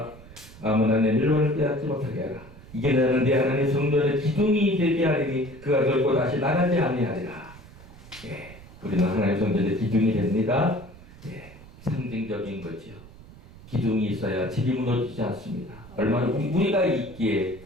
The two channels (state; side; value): noise; right; rumble, 19 dB below the sound